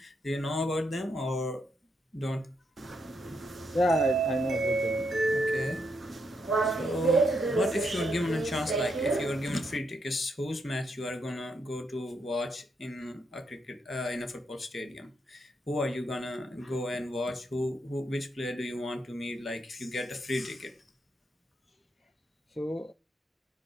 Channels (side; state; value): both; normal; correlation 0.78